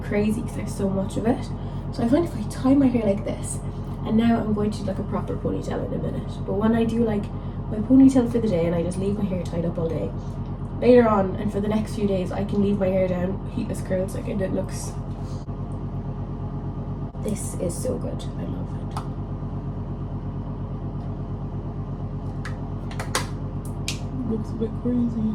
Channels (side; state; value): both; identical; correlation 1.00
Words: crazy because I have so much of it. So I find if I tie my hair like this, and now I'm going to do like a proper ponytail in a minute, but when I do like my ponytail for the day and I just leave my hair tied up all day, later on and for the next few days I can leave my hair down heatless curls like, and it looks, this is so good. I love it. Looks a bit crazy.